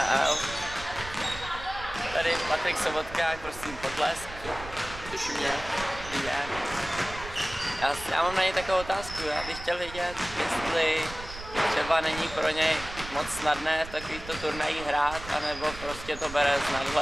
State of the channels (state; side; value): noise; right; rumble, 13 dB below the sound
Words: Tady Patrik Sobotka, prosím potlesk. Těší mě. Já mám na něj takovou otázku, já bych chtěl vědět, jestli třeba není pro něj moc snadné v takovýchto turnajích hrát, anebo prostě to bere s